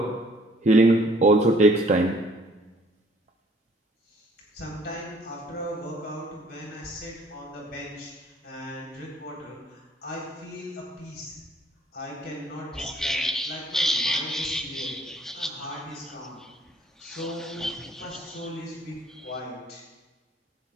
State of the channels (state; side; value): normal; both; correlation 0.59